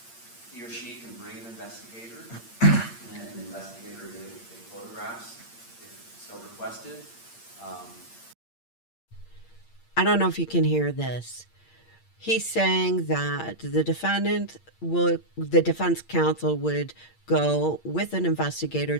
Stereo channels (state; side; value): late; right; 8.7 ms